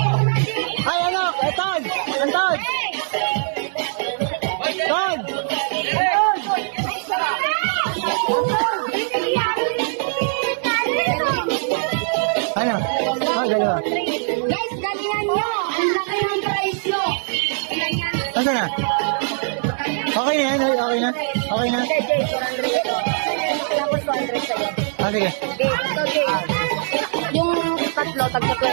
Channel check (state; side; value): silent; left; 58 dB below the other